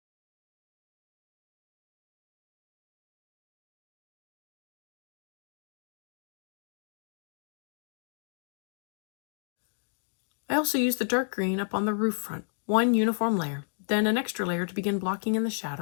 I also use the dark green up on the roof front, one uniform layer, then an extra layer to begin blocking in the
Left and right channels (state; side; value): silent; right; digital silence